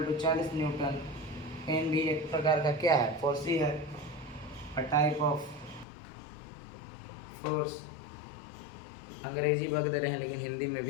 to 40 newton. N भी एक प्रकार का क्या है? फोर्स ही है, अ टाइप ऑफ फोर्स। अंग्रेजी बक दे रहे हैं लेकिन हिंदी में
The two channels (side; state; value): right; drops out; at 5.9 s